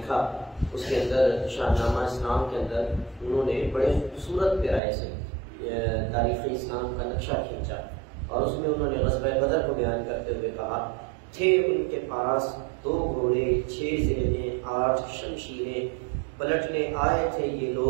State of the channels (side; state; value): left; drops out; at 4.8 s